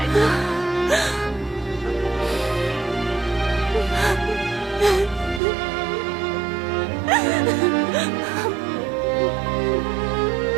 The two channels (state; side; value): drops out; left; at 5.4 s